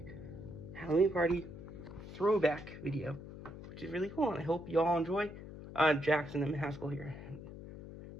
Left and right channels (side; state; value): left; noise; hum, 13 dB below the sound